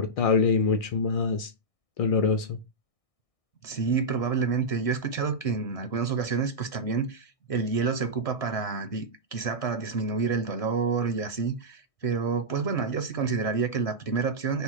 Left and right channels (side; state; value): right; late; 1.6 ms